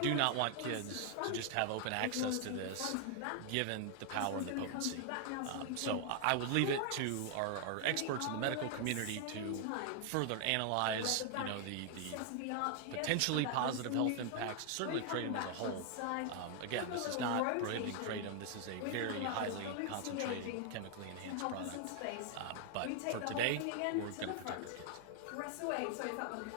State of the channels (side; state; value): both; different; correlation 0.00